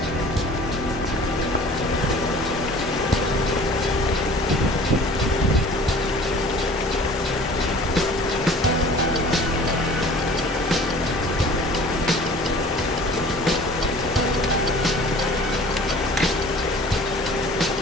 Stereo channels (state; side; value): normal; both; correlation 0.47